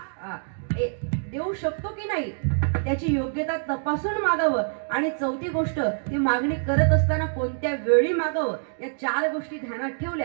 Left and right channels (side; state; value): left; silent; digital silence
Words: देऊ शकतो की नाही त्याची योग्यता तपासून मागावं. आणि चौथी गोष्ट, ती मागणी करत असताना कोणत्या वेळी मागावं. या 4 गोष्टी ध्यानात